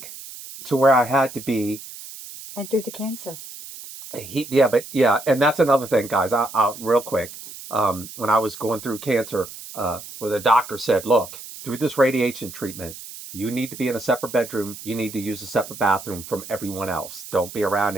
to where I had to be. And through the cancer. Yeah, and that's another thing, guys. I real quick. When I was going through cancer, where the doctor said, "Look, through this radiation treatment, you need to be in a separate bedroom. You need to use a separate bathroom from everyone else. Don't be around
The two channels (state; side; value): noise; right; hiss, 14 dB below the sound